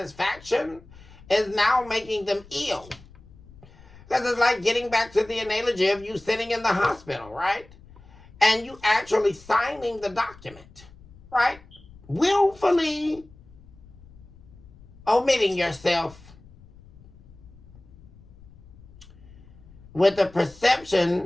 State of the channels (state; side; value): noise; left; rumble, 23 dB below the sound